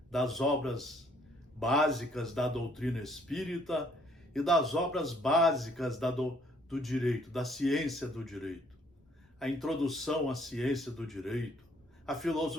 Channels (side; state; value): both; normal; correlation 0.64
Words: das obras básicas da doutrina espírita e das obras básicas do direito, da ciência do direito. A introdução à ciência do direito, a